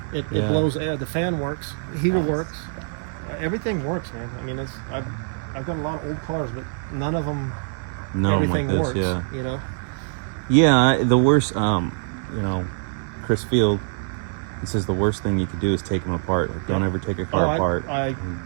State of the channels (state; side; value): silent; left; digital silence